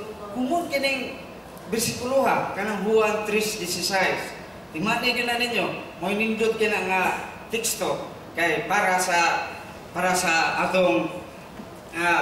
kumon kining bersikulo ha, kanang Juan 3:16. Timani din na ninyo, mo nindot kina nga teksto kay para sa atong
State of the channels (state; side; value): identical; both; correlation 1.00